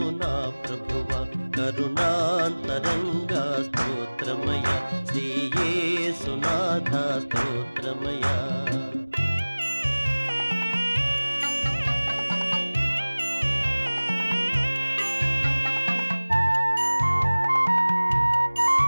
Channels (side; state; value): both; inverted; correlation -1.00